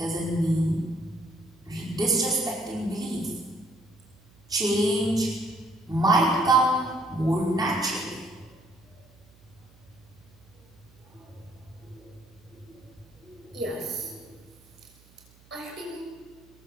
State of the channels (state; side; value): noise; right; hum, 27 dB below the sound